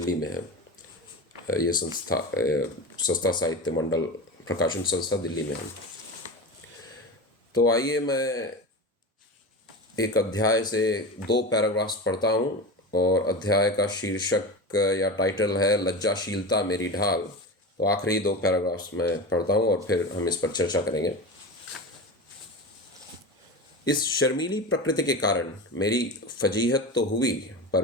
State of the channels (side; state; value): both; normal; correlation 0.26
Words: में है। ये संस्था सस्ता साहित्य मंडल प्रकाशन संस्था दिल्ली में है। तो आइए मैं एक अध्याय से 2 पैराग्राफ्स पढ़ता हूँ और अध्याय का शीर्षक या टाइटल है लज्जाशीलता मेरी ढाल। तो आखिरी 2 पैराग्राफ्स मैं पढ़ता हूँ और फिर हम इस पर चर्चा करेंगे। इस शर्मीली प्रकृति के कारण मेरी फजीहत तो हुई, पर